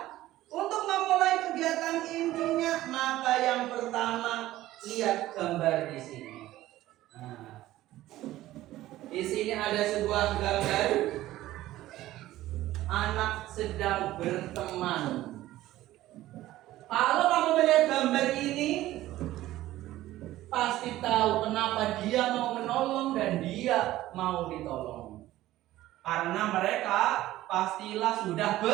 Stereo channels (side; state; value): left; quieter; 15.4 dB